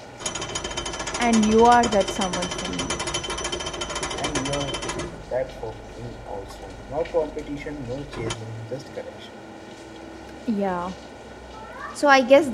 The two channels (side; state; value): both; identical; correlation 1.00